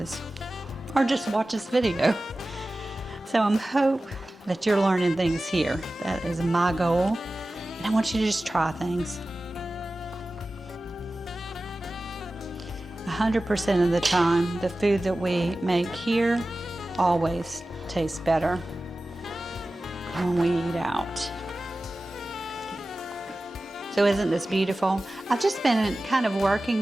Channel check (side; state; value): both; normal; correlation 0.96